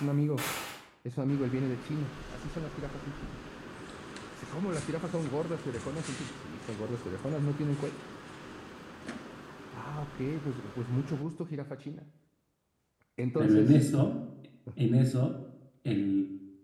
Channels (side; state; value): both; identical; correlation 1.00